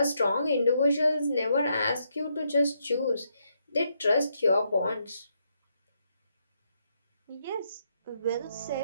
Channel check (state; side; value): inverted; both; correlation -0.78